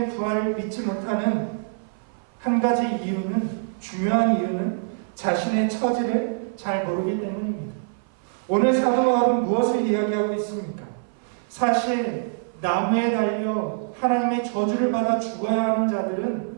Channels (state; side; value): silent; left; 57 dB below the other